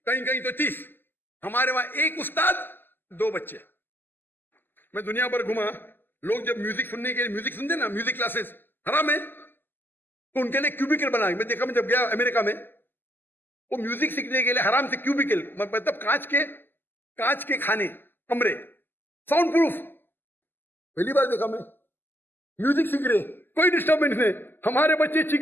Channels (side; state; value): right; late; 0.094 ms